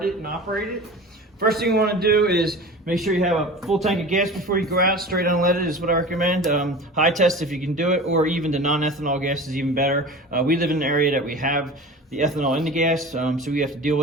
it and operate it. First thing you want to do is make sure you have a full tank of gas before you go out. Straight unleaded is what I recommend. High test if you can do it, or even the non-ethanol gas is even better. We live in an area that we have the ethanol in the gas, so we have to deal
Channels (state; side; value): normal; both; correlation 0.36